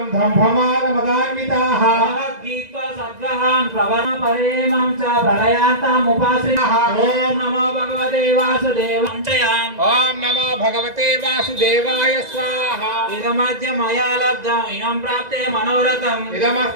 దంభమానమదాన్వితాః. భగవద్గీతా సద్గ్రహాన్ ప్రవణ పరేమం చ ప్రళయాంతముపాశ్రితః. ఓం నమో భగవతే వాసుదేవాయ. ఓం నమో భగవతే వాసుదేవాయ స్వాహా. ఇదమద్య మయా లబ్ధం ఇనం ప్రాప్తే మనోరథం.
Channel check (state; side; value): late; left; 2.0 ms